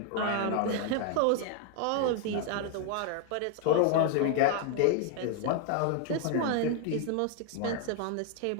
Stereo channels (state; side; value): different; both; correlation 0.00